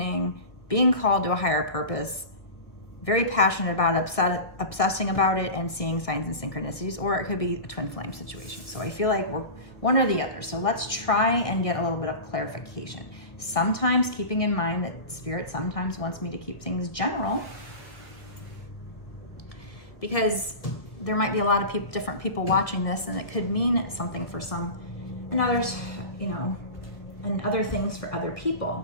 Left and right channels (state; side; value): late; right; 1.6 ms